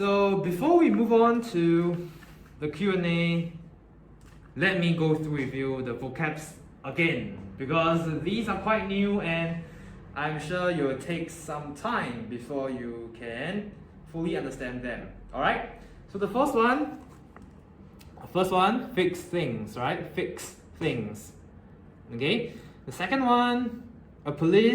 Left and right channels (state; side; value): identical; both; correlation 1.00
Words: before we move on to the Q&A, let me go through with you the vocabs again, because these are quite new and I'm sure it will take some time before you can fully understand them. Alright? So the first one, fix things, right? Fix things. Okay? The second one, a